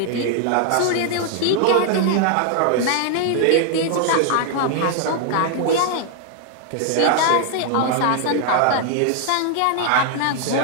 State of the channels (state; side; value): different; both; correlation 0.00